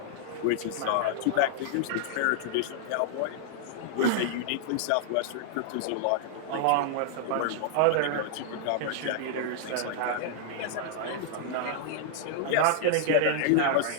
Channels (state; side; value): different; both; correlation -0.01